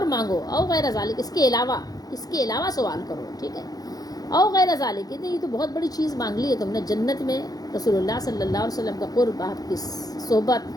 مانگو. او غیر ذالک، اس کے علاوہ سوال کرو. ٹھیک ہے. او غیر ذالک، یہ تو بہت بڑی چیز مانگ لی ہے تم نے، جنت میں رسول اللہ صلی اللہ علیہ وسلم کا قرب، آپ کی صحبت.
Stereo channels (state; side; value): late; right; 0.18 ms